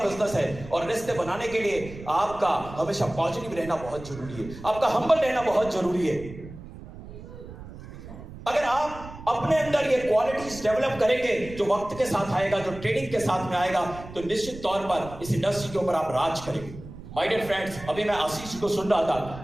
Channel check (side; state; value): right; noise; rumble, 14 dB below the sound